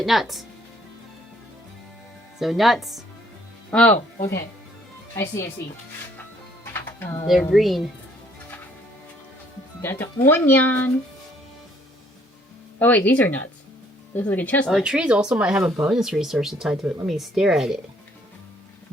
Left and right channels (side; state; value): both; normal; correlation 0.64